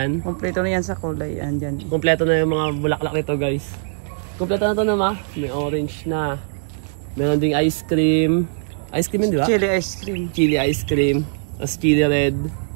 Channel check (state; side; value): silent; left; digital silence